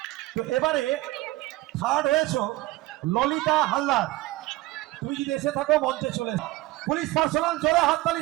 তো এবারে থার্ড হয়েছে ললিতা হালদার। তুমি যদি এসে থাকো মঞ্চে চলে। পুলিশ পার্সোনাল, জোরে হাততালি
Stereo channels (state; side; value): quieter; left; 18.5 dB